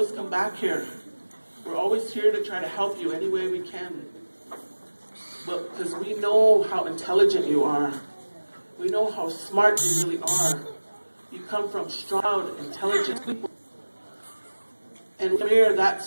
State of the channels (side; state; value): both; inverted; correlation -1.00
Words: come back here. We're always here to try to help you any way we can. But because we know how intelligent you are. We know how smart you really are. You come from strong, intelligent people. And here,